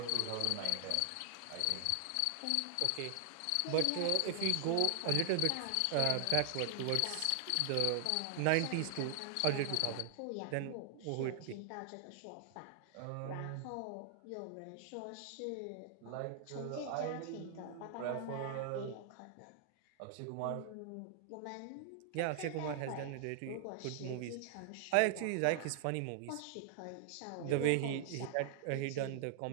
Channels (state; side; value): different; both; correlation 0.00